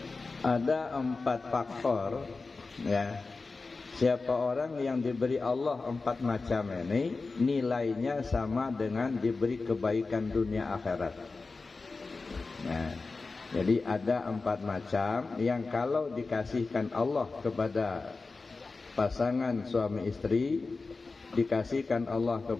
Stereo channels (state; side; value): quieter; right; 3.9 dB